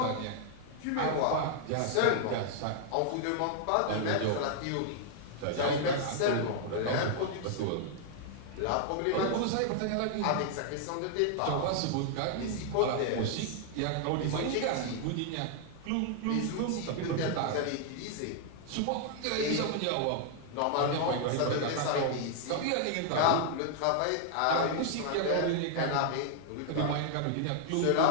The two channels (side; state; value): both; different; correlation -0.01